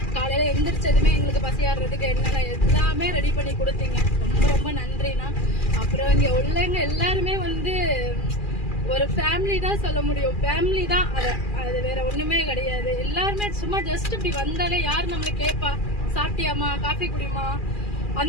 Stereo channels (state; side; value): late; right; 2.4 ms